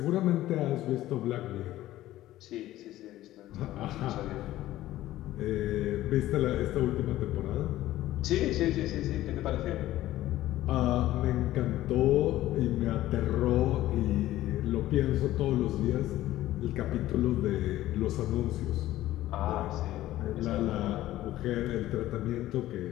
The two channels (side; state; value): right; quieter; 15.0 dB